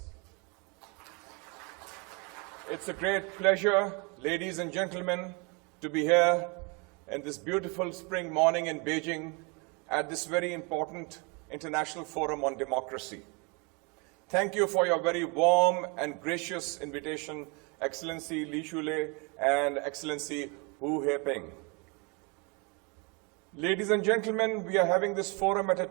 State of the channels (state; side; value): quieter; left; 30.7 dB